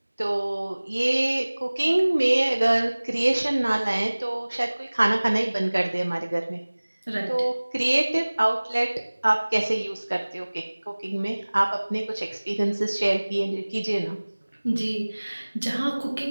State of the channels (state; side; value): inverted; both; correlation -1.00